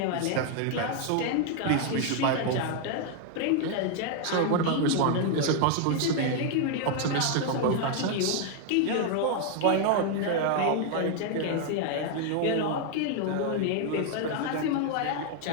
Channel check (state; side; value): different; both; correlation 0.00